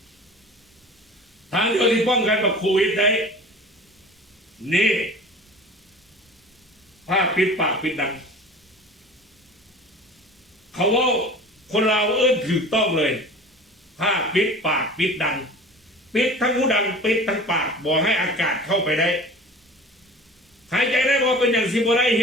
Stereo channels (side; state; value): both; normal; correlation 0.40